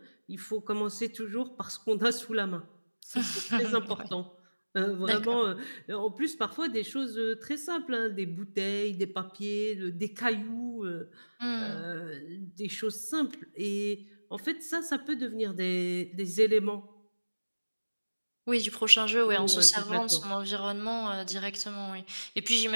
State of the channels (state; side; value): inverted; both; correlation -1.00